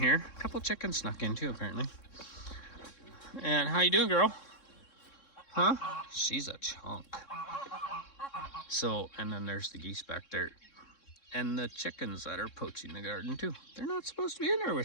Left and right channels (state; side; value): late; right; 3.6 ms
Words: A couple chickens snuck in too, apparently. And how you doing, girl? Huh? She's a chunk. So, and then there's the geese back there. And the chickens that are poaching the garden too. They're not supposed to be in there